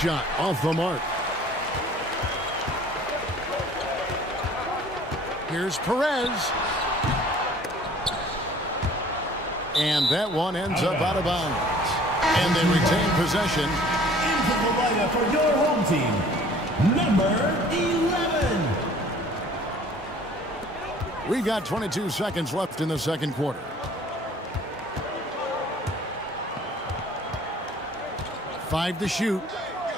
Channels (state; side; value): normal; both; correlation 0.52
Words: off the mark. Here's Perez. And that one ends up out of bounds. And they retain possession. Into the lineup for your home team, number 11. We got 22 seconds left in the second quarter. Five to shoot.